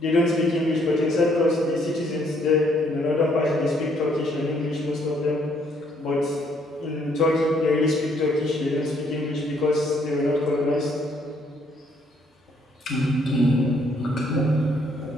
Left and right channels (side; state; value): both; normal; correlation 0.68